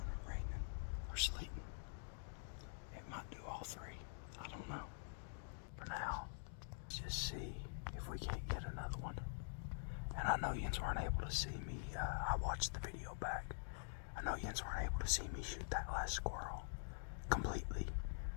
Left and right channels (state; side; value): silent; right; digital silence